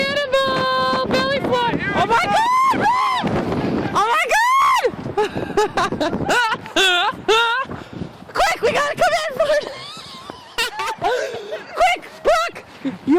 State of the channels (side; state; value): both; identical; correlation 1.00